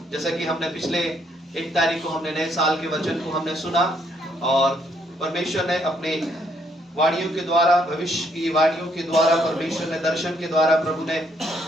जैसा कि हमने पिछले 1 तारीख को हमने नए साल के वचन को हमने सुना और परमेश्वर ने अपने वाणियों के द्वारा, भविष्य की वाणियों के द्वारा, परमेश्वर ने दर्शन के द्वारा,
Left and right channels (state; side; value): normal; both; correlation 0.70